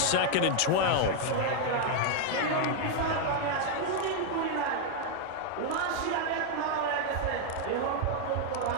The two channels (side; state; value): both; different; correlation 0.00